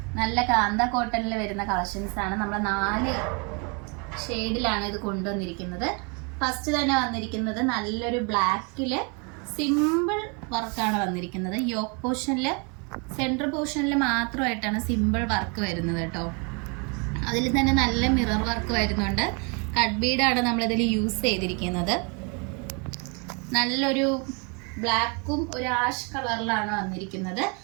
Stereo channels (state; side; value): quieter; left; 33.8 dB